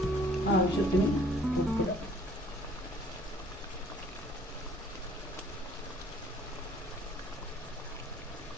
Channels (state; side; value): normal; both; correlation 0.57